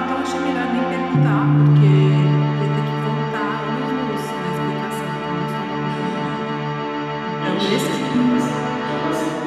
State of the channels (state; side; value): identical; both; correlation 1.00